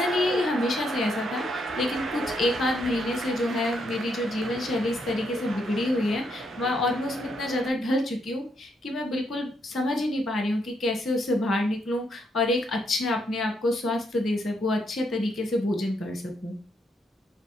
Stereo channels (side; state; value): both; normal; correlation 0.76